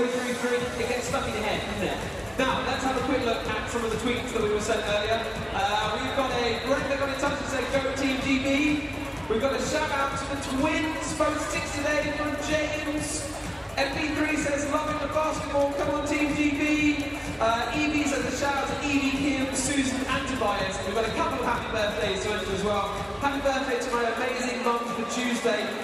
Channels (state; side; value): identical; both; correlation 1.00